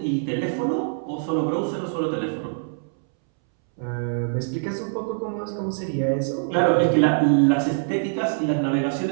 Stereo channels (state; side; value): silent; left; 63 dB below the other